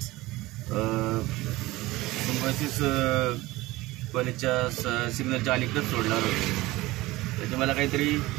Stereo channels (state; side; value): quieter; left; 19.3 dB